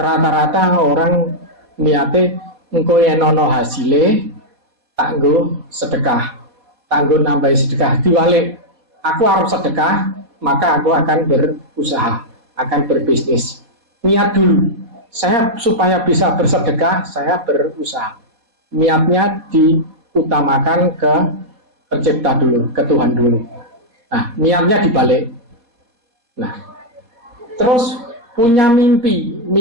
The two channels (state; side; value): late; left; 4.2 ms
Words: rata-rata orang niate engko yen ana hasile tak nggo sedekah, tak nggo nambahi sedekah. Diwalik, aku harus sedekah, maka aku akan berusaha, akan berbisnis. Niat dulu, saya supaya bisa bersedekah, saya berusaha. Niatnya diutamakan ke pencipta dulu, ke Tuhan dulu. Nah, niatnya dibalik. Nah, terus punya mimpi